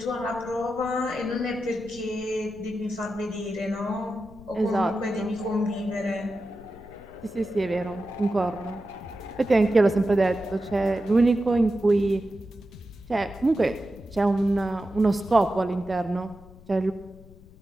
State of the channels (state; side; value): noise; left; rumble, 21 dB below the sound